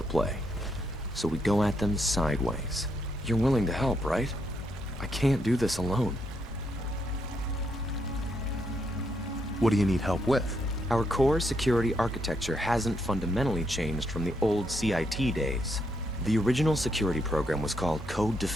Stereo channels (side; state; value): both; normal; correlation 0.77